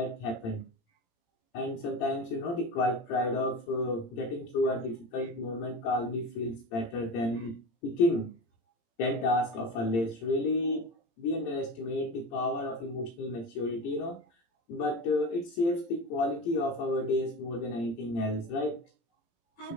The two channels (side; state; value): right; late; 17 ms